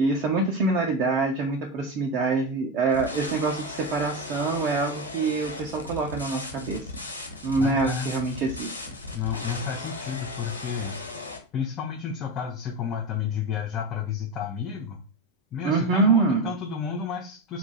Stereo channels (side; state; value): both; normal; correlation 0.19